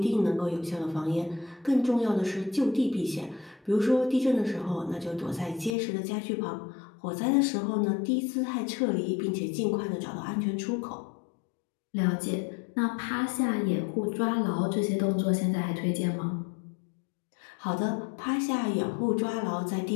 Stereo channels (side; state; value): right; drops out; at 5.8 s